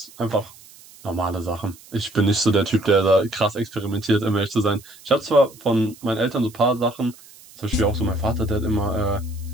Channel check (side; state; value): right; noise; hiss, 22 dB below the sound